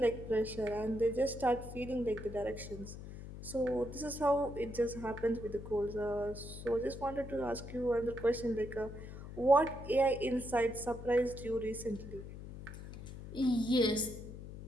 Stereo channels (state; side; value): noise; left; hum, 11 dB below the sound